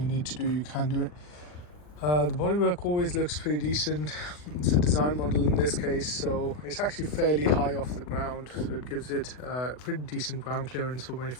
need to do, you can do it. The bodywork always looks pretty decent. It's a design model in this case, so it's actually fairly high off the ground, so it gives it pretty decent ground clearance for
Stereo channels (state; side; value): late; right; 40 ms